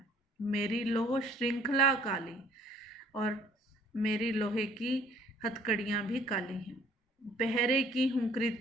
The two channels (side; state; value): both; normal; correlation 0.57